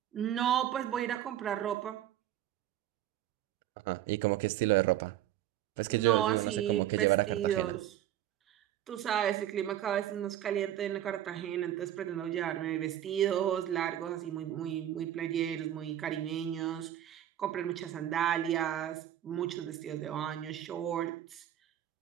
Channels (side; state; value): left; quieter; 12.1 dB